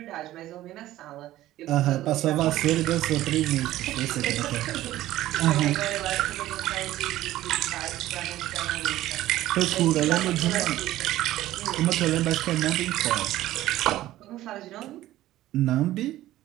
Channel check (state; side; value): quieter; left; 14.9 dB